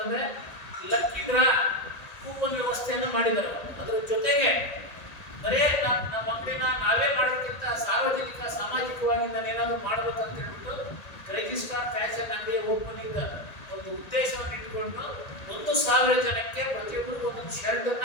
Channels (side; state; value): right; late; 1.8 ms